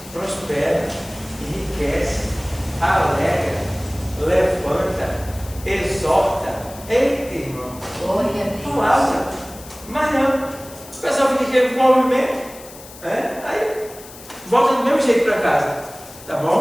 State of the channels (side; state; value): left; noise; hiss, 18 dB below the sound